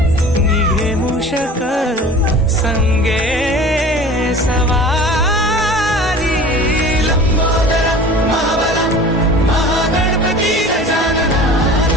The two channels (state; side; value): normal; both; correlation 0.41